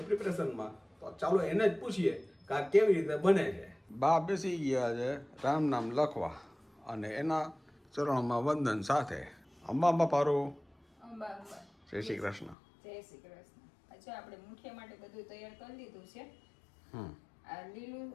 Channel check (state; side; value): drops out; right; at 12.6 s